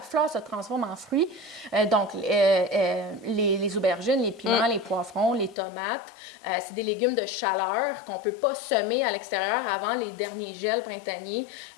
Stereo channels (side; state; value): right; drops out; at 5.6 s